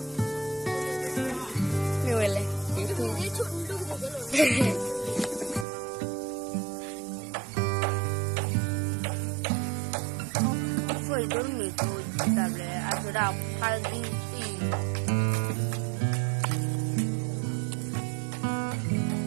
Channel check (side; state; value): left; drops out; at 5.7 s